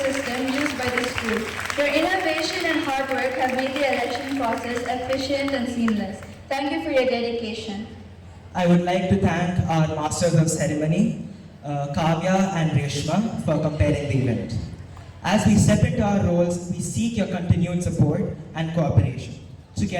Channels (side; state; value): both; identical; correlation 1.00